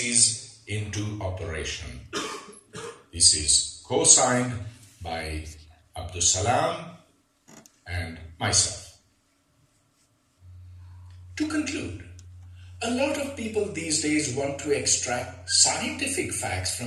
into operation." This is co-signed by Abdus Salam and myself. To conclude, a lot of people these days want to extract scientific facts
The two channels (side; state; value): both; identical; correlation 1.00